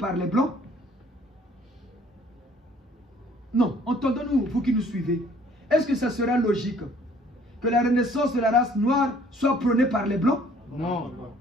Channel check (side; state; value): both; normal; correlation 0.57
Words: les blancs? Non, entendons-nous, vous qui nous suivez. Est-ce que ça sera logique que la renaissance de la race noire soit prônée par les blancs? Non.